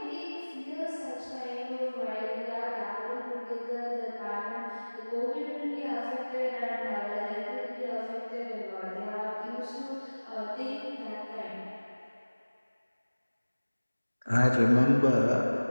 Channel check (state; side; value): inverted; both; correlation -1.00